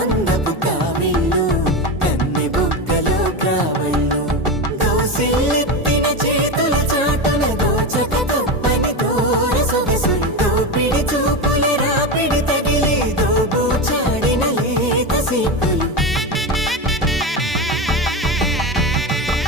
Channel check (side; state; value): both; normal; correlation 0.18